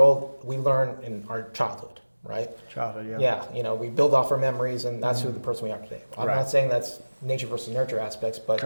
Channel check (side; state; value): both; inverted; correlation -1.00